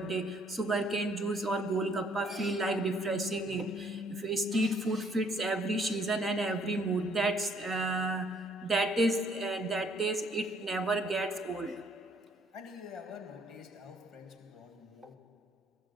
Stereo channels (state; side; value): normal; both; correlation 0.64